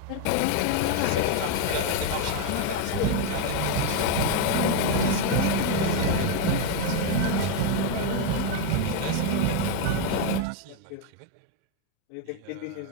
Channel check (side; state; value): both; different; correlation 0.01